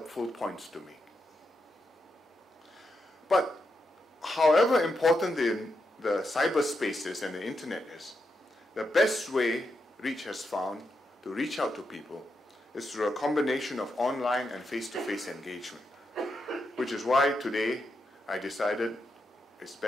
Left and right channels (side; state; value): both; normal; correlation 0.84